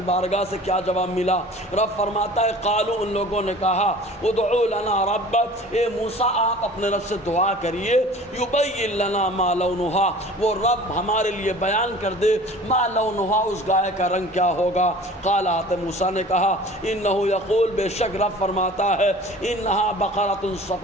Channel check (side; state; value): both; normal; correlation 0.44